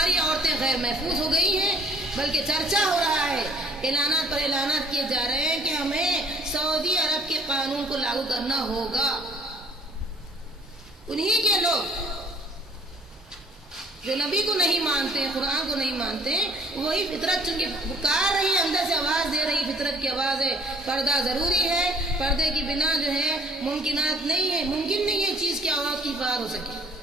عورتیں غیر محفوظ ہو گئی ہیں، بلکہ چرچا ہو رہا ہے، اعلانات پر اعلانات کیے جا رہے ہیں کہ ہمیں سعودی عرب کے قانون کو لاگو کرنا ہوگا۔ انہی کے لوگ جو نبی کو نہیں مانتے، قرآن کو نہیں مانتے، وہی فطرت چونکہ پکار رہی ہے، اندر سے آواز دے رہی، فطرت کی آواز ہے، پردہ ضروری ہے، پردے کی بنا جو ہے ممکنات نہیں ہے، ممکن نہیں ہے چیز کی آواز کی حفاظت ہو سکے،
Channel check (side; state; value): both; normal; correlation 0.56